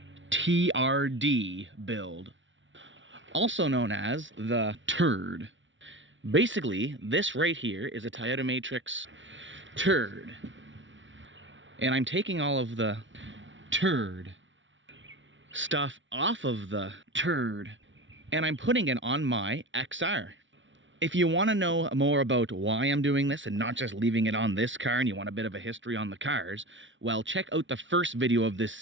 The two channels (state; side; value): late; left; 0.55 ms